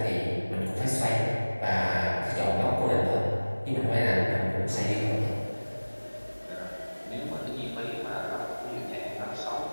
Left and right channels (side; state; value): both; inverted; correlation -1.00